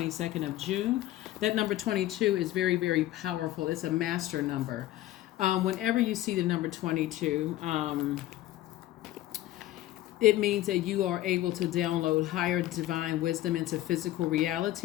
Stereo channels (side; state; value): right; quieter; 14.7 dB